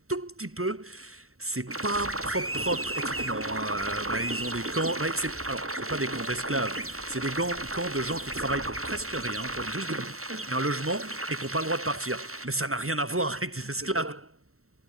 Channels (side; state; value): left; late; 0.63 ms